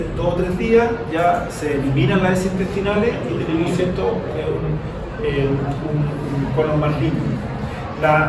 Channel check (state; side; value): identical; both; correlation 1.00